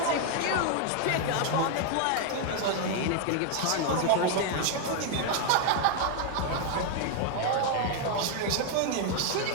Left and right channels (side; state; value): both; different; correlation 0.01